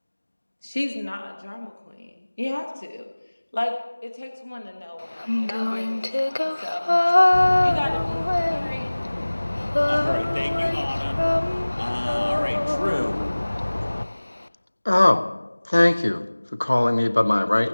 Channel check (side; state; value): both; inverted; correlation -1.00